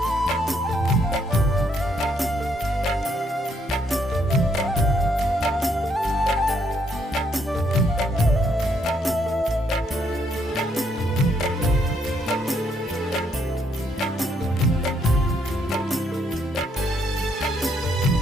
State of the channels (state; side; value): normal; both; correlation 0.72